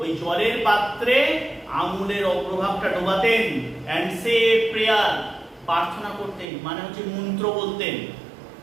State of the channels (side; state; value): left; drops out; at 6.5 s